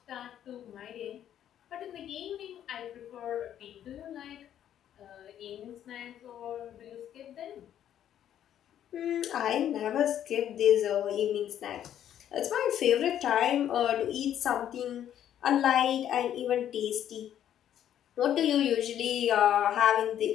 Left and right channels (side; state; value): right; quieter; 10.6 dB